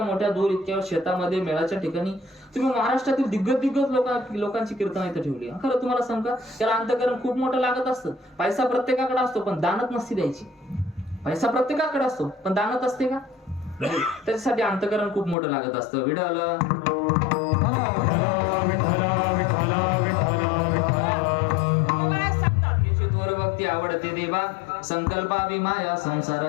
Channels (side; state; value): right; drops out; at 15.4 s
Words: मोठ्या दूर, इतक्या शेतामध्ये, मेळाच्या ठिकाणी तुम्ही महाराष्ट्रातील दिग्गज लोकांची कीर्तन इथं ठेवली. खरं तुम्हाला सांग का, त्याला अंतकरण खूप मोठं लागत असतं. पैसा प्रत्येकाकडे असतो, पण दानत नसती द्यायची. पैसा प्रत्येकाकडे असतो, पण दानत असते का? त्याच्यासाठी अंतकरण खूप मोठं लागत असतं. विडल भक्ती आवडते देवा, संकल्पावी माया